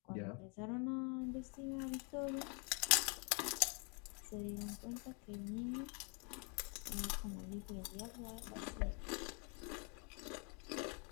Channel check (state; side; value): quieter; right; 36.0 dB